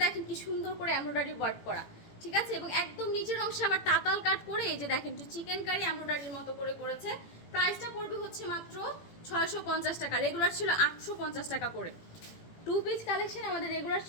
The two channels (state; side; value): late; right; 18 ms